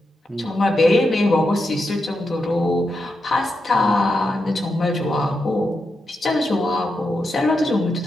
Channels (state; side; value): normal; both; correlation 0.86